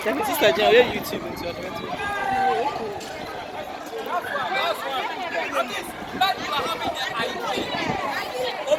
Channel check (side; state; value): both; identical; correlation 1.00